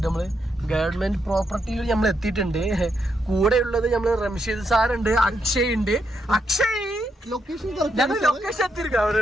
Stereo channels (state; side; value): normal; both; correlation 0.80